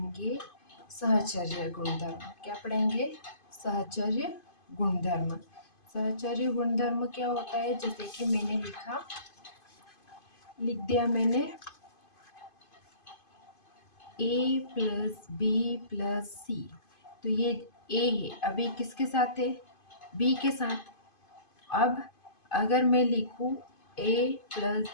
सहचर्य गुणधर्म। क्या पढ़ेंगे? सहचर्य गुणधर्म। सहचर्य गुणधर्म क्या होता है? जैसे कि मैंने लिख दिया मैंने a प्लस बी प्लस सी। तो ये a है, अभी किसके साथ है? b के साथ। अब अगर मैं लिखूं a प्लस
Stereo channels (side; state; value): right; late; 2.5 ms